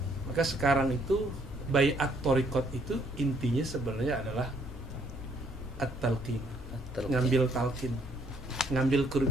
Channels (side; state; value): both; normal; correlation 0.64